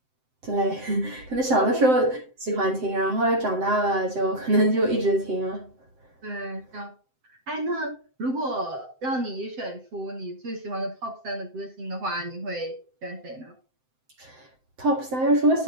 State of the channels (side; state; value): left; late; 7.7 ms